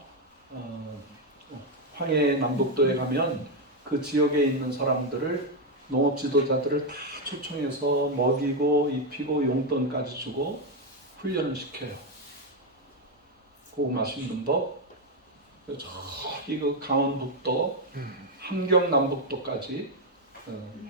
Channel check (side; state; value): both; normal; correlation 0.05